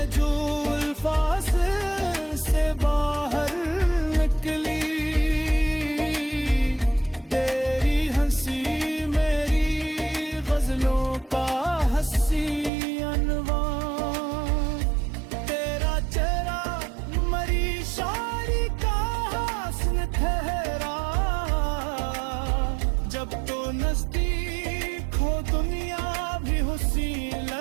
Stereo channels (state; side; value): drops out; left; at 12.7 s